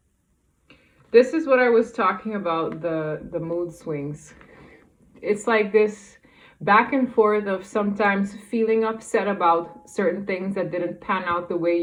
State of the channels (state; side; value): identical; both; correlation 1.00